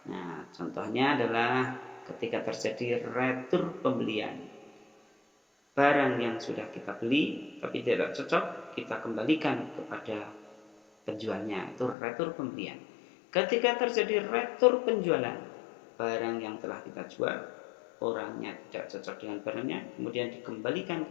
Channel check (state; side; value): drops out; right; at 12.0 s